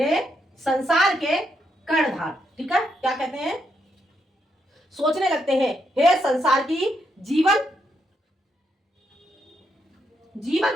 संसार के कर्णधार। ठीक है, क्या कहते हैं? सोचने लगते हैं, हे संसार की जीवन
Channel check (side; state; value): both; normal; correlation 0.79